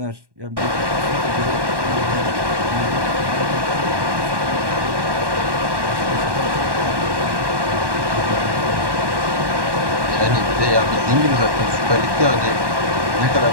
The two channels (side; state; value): left; late; 1.1 ms